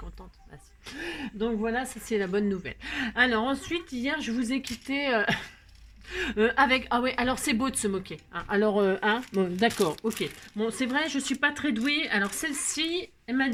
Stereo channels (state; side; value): identical; both; correlation 1.00